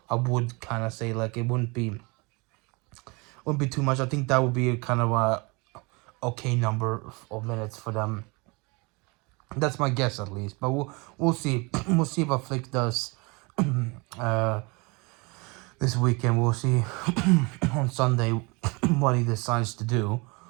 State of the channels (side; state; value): left; quieter; 27.7 dB